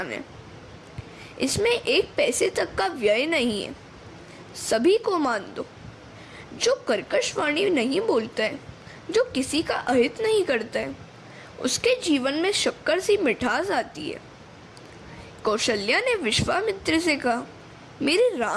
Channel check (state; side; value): identical; both; correlation 1.00